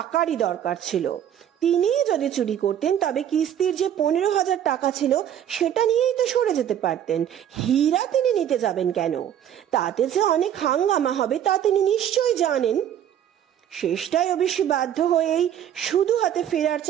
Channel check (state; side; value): quieter; left; 10.1 dB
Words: দরকার ছিল। তিনি যদি চুরি করতেন তবে কিস্তির যে 15,000 টাকা ছিল সেটা নিয়েই তো সরে যেতে পারতেন। হীরা তিনি নিতে যাবেন কেন? তাতে যে অনেক হাঙ্গামা হবে তা তিনি নিশ্চয়ই জানেন। শেষটায় অবশ্যই বাধ্য হয়েই শুধু হাতে ফেরার